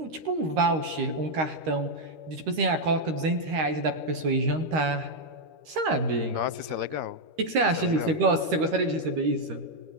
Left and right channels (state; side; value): late; left; 13 ms